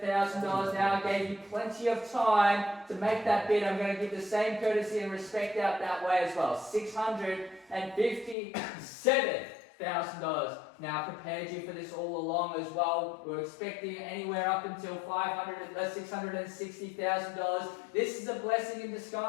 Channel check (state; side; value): drops out; right; at 8.3 s